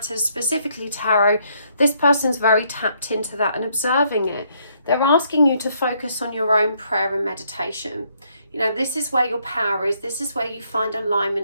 specifically tarot, this person's very tapped into that and observing it. They're asking you to focus on your own prayer and meditation. You know, this is where your power is. This is where you find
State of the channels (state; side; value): inverted; both; correlation -0.70